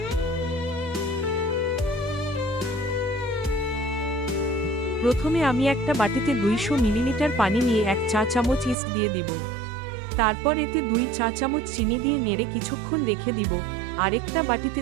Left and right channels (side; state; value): left; drops out; at 8.8 s